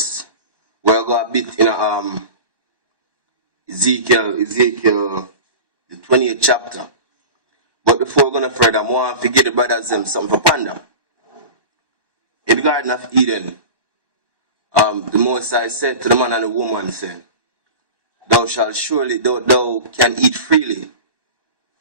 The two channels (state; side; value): late; left; 1.1 ms